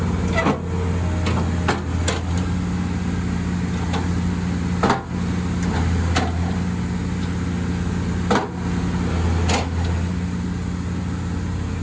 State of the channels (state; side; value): identical; both; correlation 1.00